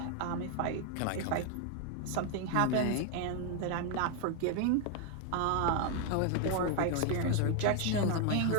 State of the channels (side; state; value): both; different; correlation 0.01